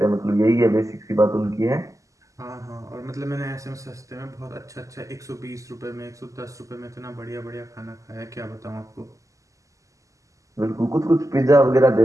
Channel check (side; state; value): left; late; 0.16 ms